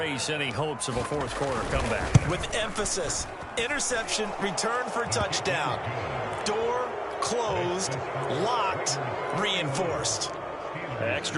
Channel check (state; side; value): identical; both; correlation 1.00